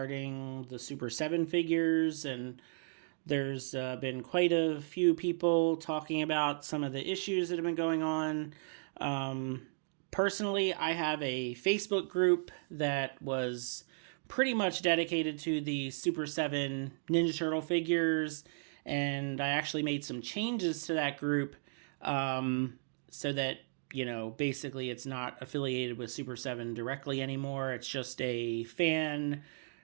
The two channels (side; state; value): left; silent; digital silence